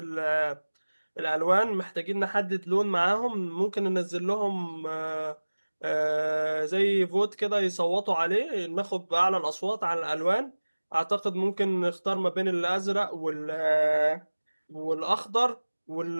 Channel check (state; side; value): inverted; both; correlation -1.00